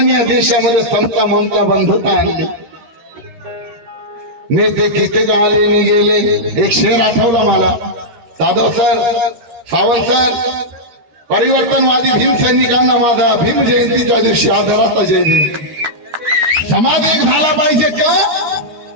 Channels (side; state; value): left; late; 13 ms